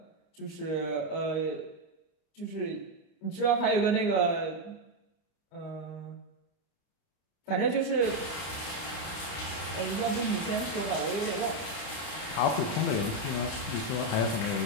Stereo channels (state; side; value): late; right; 32 ms